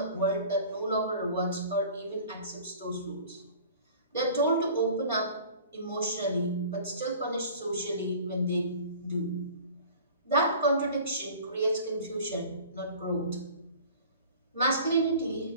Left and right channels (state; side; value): inverted; both; correlation -0.44